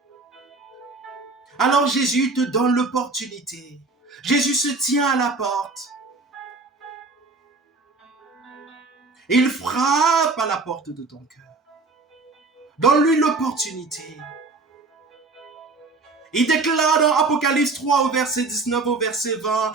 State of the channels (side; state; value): left; quieter; 3.6 dB